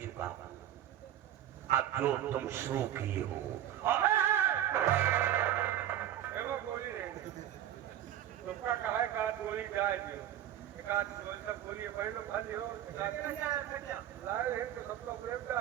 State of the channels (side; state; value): left; quieter; 11.7 dB